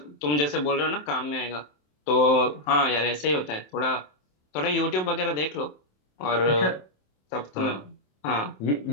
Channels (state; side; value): late; right; 27 ms